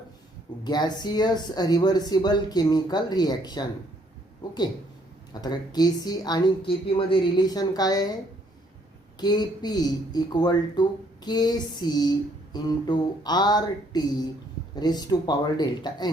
gaseous reversible chemical reaction. Okay. आता Kc आणि Kp मध्ये relation काय आहे? Kp equal to Kc into RT raise to power delta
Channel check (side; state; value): both; normal; correlation 0.66